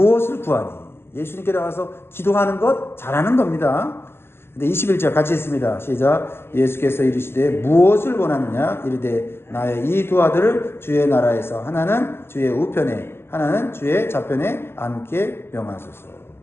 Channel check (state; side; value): late; right; 0.12 ms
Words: 구하니? 예수님께 나와서 기도하는 것 잘하는 겁니다. 근데 21절 같이 읽습니다. 시작. 예수께서 이르시되 무엇을 원하느냐? 이르되 나의 이 두 아들을 주의 나라에서 하나는 주의 우편에 하나는 주의 좌편에 앉게 명하소서.